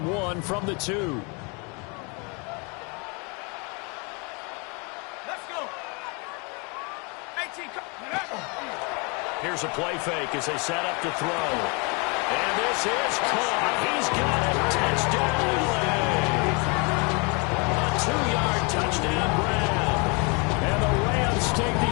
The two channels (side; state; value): right; quieter; 31.9 dB